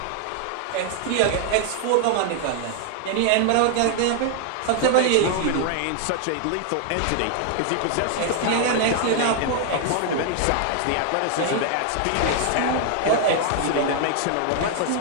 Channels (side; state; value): both; different; correlation 0.00